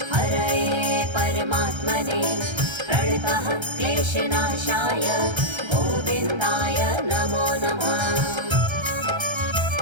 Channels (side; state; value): left; late; 1.3 ms